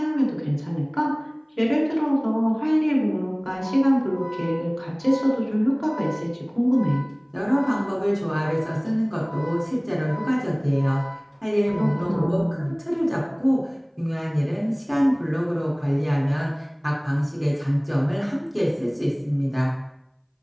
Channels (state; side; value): identical; both; correlation 1.00